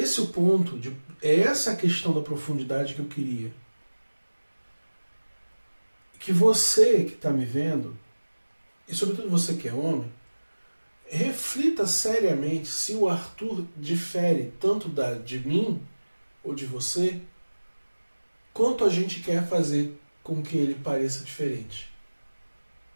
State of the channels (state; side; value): inverted; both; correlation -1.00